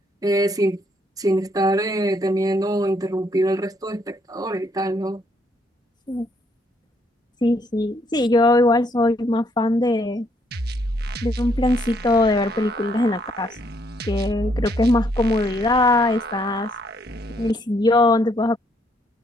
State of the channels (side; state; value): both; normal; correlation 0.71